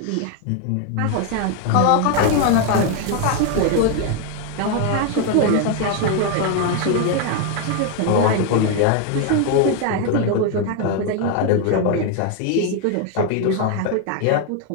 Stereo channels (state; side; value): different; both; correlation 0.01